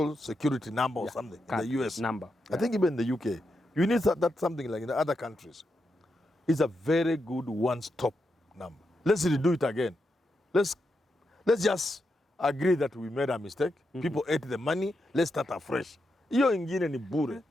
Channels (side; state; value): both; normal; correlation 0.85